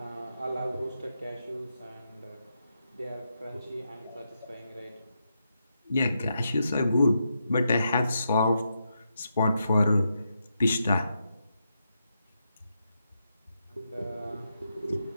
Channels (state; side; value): inverted; both; correlation -0.84